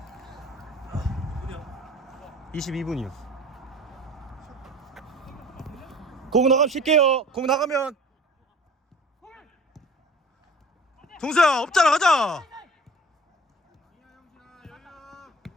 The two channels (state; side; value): normal; both; correlation 0.45